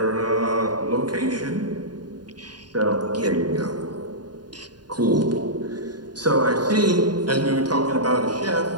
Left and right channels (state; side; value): late; left; 0.70 ms